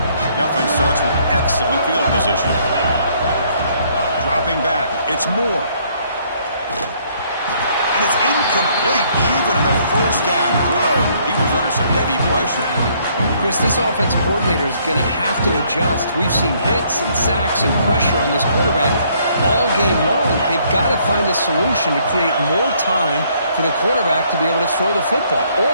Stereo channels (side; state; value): both; inverted; correlation -0.66